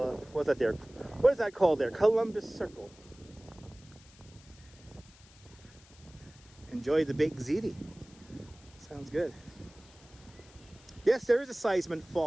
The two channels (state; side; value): noise; left; hiss, 25 dB below the sound